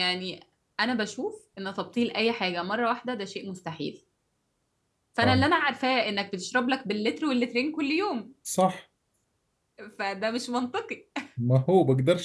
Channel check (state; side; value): identical; both; correlation 1.00